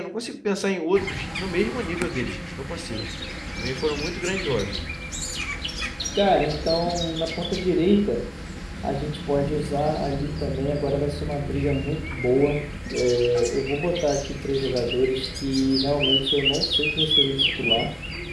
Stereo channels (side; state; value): both; identical; correlation 1.00